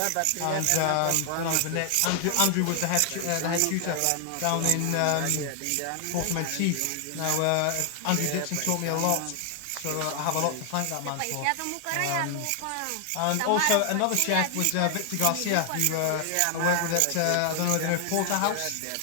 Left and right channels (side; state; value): both; different; correlation 0.00